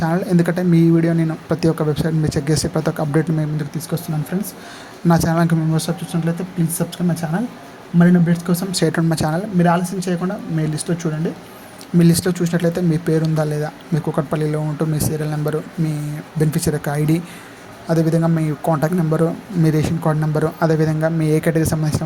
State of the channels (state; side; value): identical; both; correlation 1.00